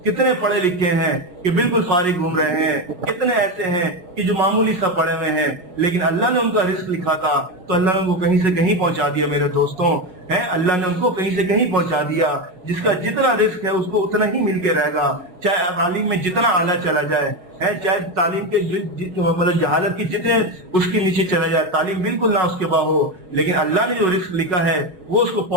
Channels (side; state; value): left; late; 5.4 ms